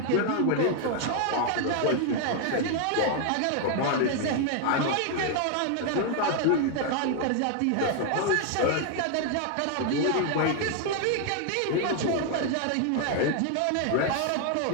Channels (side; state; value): both; different; correlation 0.00